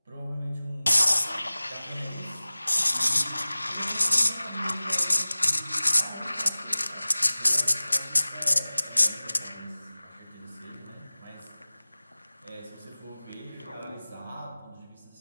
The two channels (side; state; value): both; inverted; correlation -0.98